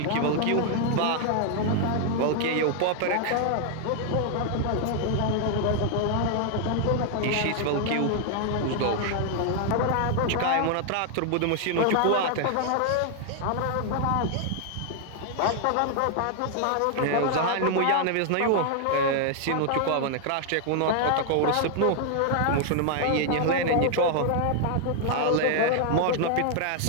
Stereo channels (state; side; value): different; both; correlation 0.00